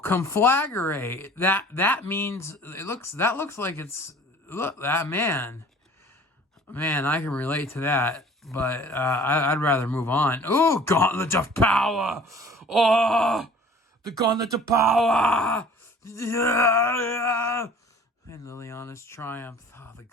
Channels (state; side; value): normal; both; correlation 0.48